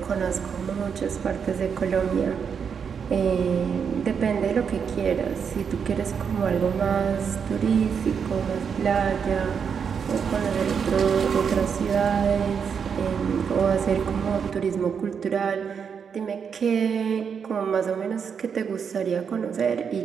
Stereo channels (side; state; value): left; quieter; 6.8 dB